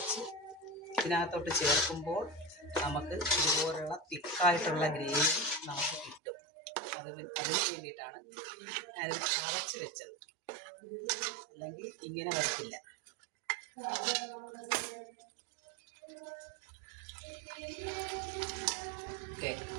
ഇതിനകത്തോട്ട് ചേർക്കുമ്പോൾ നമുക്ക് ഇതുപോലുള്ള തിക്കായിട്ടുള്ള ഗ്രേവി നമുക്ക് കിട്ടും. അതിന് വേണ്ടിയിട്ടാണ് ഞാനിത് ചതച്ച് വെച്ചത്. അല്ലെങ്കിൽ ഇങ്ങനെ വരത്തില്ല. ഓക്കെ,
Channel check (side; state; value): left; drops out; at 6.2 s